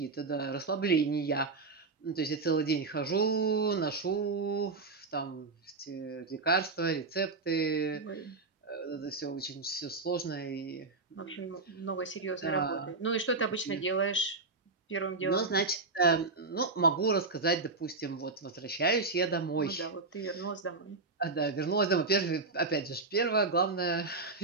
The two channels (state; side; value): quieter; left; 3.8 dB